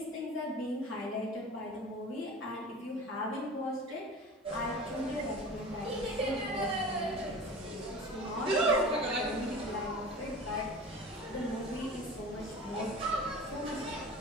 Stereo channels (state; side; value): normal; both; correlation 0.37